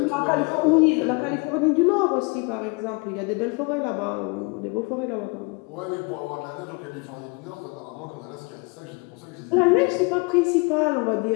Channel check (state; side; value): quieter; right; 30.7 dB